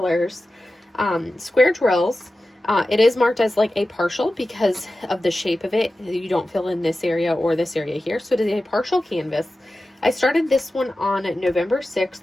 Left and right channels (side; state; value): both; normal; correlation 0.94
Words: square drills. It is marked as like a partial because of the shape of it. You don't fill in this area or this area here. So it is a partial canvas. I started this one on November 6th,